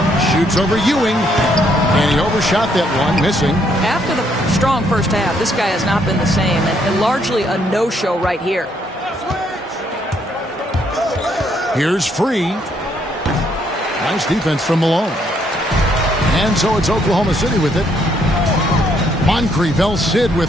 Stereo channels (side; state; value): both; normal; correlation 0.71